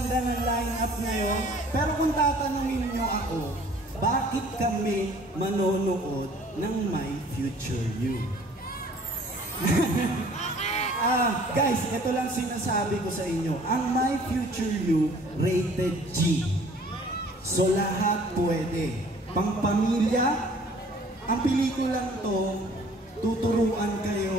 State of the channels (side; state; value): both; normal; correlation 0.53